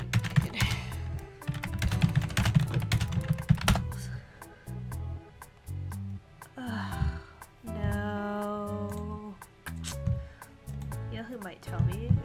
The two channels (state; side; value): identical; both; correlation 1.00